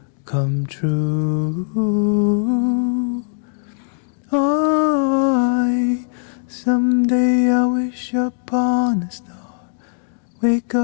come true. Someday I wish upon a star, wake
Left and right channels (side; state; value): right; silent; digital silence